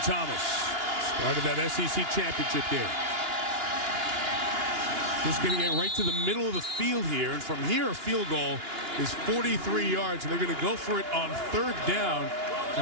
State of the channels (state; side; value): late; left; 2.9 ms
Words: Thomas started that SEC championship game. Just going to get right to the middle of the field here. And from here, a field goal is 43 yards. And they're going to go for it on 3rd down